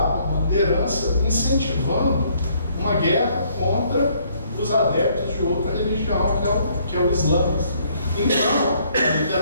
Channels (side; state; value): both; inverted; correlation -0.66